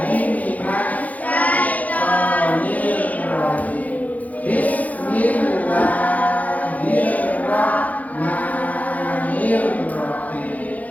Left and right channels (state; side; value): late; right; 0.076 ms